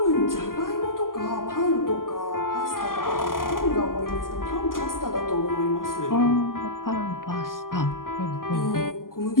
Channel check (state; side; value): late; right; 0.91 ms